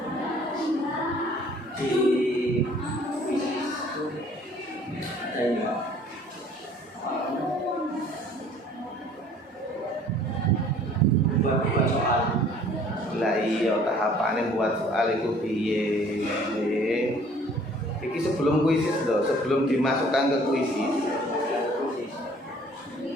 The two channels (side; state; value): both; normal; correlation 0.54